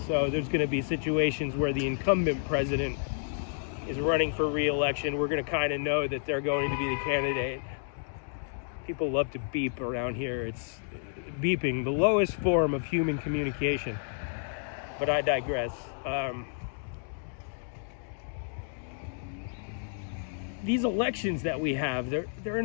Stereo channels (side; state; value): right; silent; digital silence